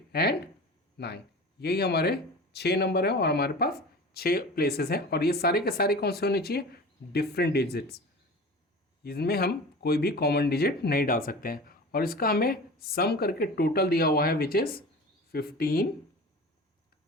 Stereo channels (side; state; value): both; normal; correlation 0.36